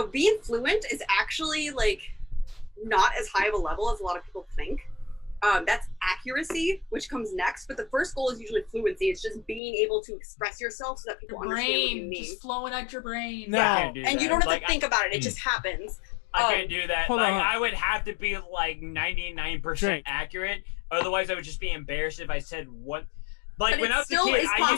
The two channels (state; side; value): drops out; right; at 9.6 s